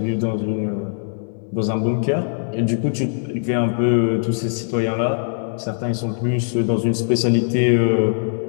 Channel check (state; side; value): silent; right; digital silence